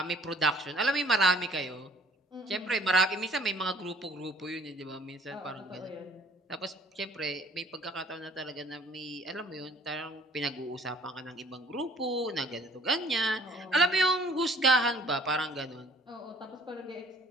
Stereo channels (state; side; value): normal; both; correlation 0.55